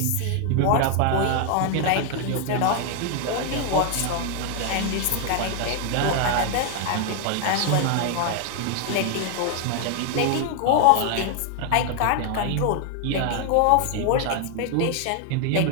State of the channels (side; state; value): both; different; correlation 0.00